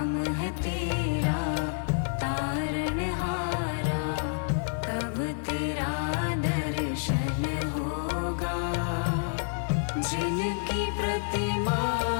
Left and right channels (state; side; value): silent; right; 59 dB below the other